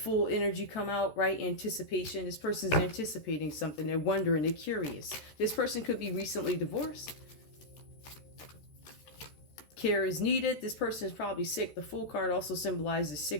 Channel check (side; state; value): right; late; 13 ms